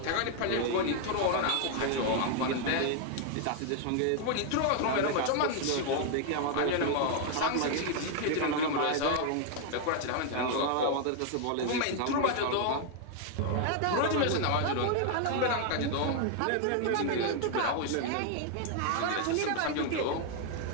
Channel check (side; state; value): both; different; correlation 0.00